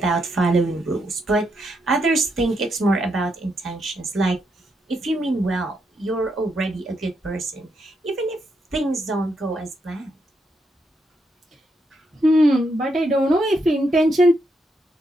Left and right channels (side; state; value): both; normal; correlation 0.80